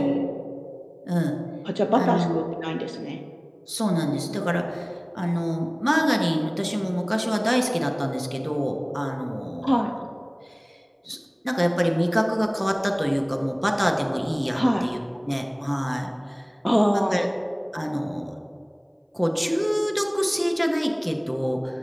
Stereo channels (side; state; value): both; identical; correlation 1.00